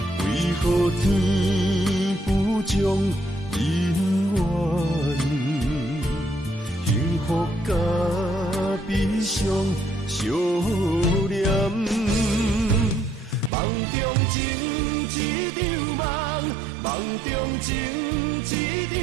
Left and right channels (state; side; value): drops out; left; at 13.5 s